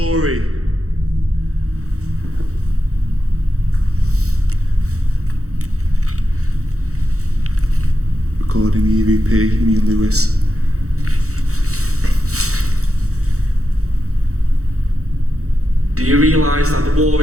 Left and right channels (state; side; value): late; left; 0.64 ms